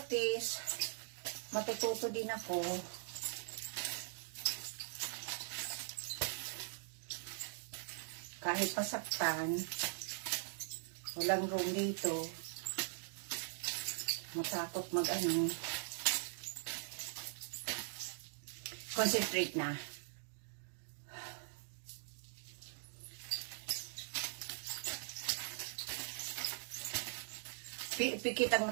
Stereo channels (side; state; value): left; silent; digital silence